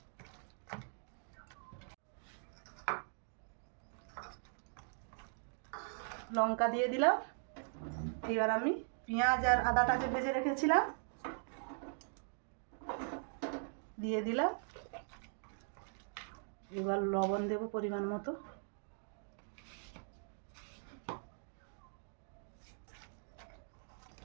লঙ্কা দিয়ে দিলাম, এবার আমি পেঁয়াজ আর আদাটা যে ভেজে রেখেছিলাম দিয়ে দিলাম। এবার লবণ দেব পরিমাণ মতো।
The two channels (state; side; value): silent; left; 51 dB below the other